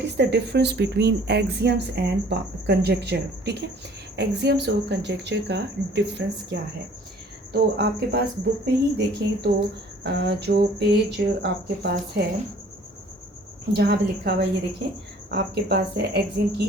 is the difference between axioms and conjecture. ठीक है, एक्सियम्स और कंजेक्चर का डिफरेंस क्या है। तो आपके पास बुक में ही देखें तो जो पेज आपके पास है जहाँ पे लिखा हुआ है, ये देखें आपके पास है एक्सियम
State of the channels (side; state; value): both; normal; correlation 0.54